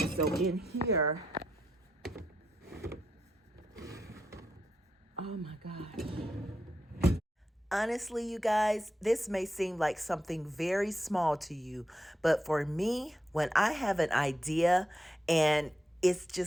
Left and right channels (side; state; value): both; normal; correlation 0.84